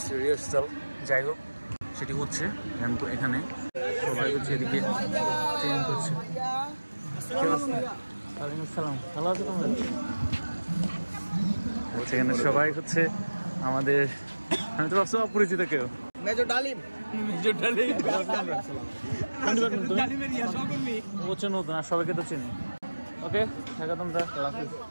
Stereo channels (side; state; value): both; inverted; correlation -1.00